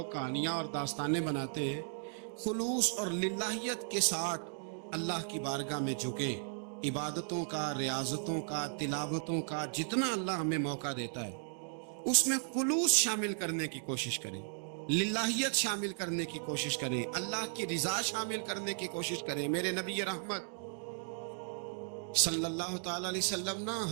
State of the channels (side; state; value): left; silent; digital silence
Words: کہانیاں اور داستانیں بناتے ہیں. خلوص اور للہیت کے ساتھ اللہ کی بارگاہ میں جھکیں. عبادتوں کا، ریاضتوں کا، تلاوتوں کا جتنا اللہ ہمیں موقع دیتا ہے اس میں خلوص شامل کرنے کی کوشش کریں، للہیت شامل کرنے کی کوشش کریں، اللہ کی رضا شامل کرنے کی کوشش کریں. میرے نبی رحمت صلی اللہ تعالی علیہ وسلم نا